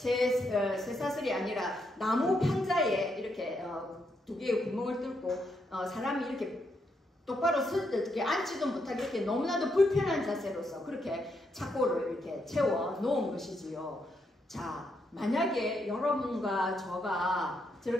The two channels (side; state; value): both; normal; correlation 0.79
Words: 아니라 나무 판자에 이렇게 2개의 구멍을 뚫고 사람이 이렇게 똑바로 앉지도 못하게 이렇게 너무나도 불편한 자세로서 그렇게 착고를 이렇게 채워 놓은 것이지요. 자, 만약에 여러분과 저가